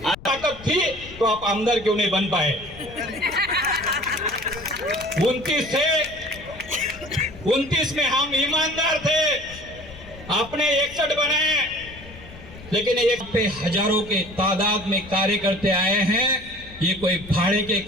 थी तो आप आमदार क्यों नहीं बन पाए? 29 में हम ईमानदार थे, आपने 61 बनाए, लेकिन एक पे हजारों के तादाद में कार्यकर्ते आए हैं। ये कोई भाड़े के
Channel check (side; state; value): left; noise; rumble, 17 dB below the sound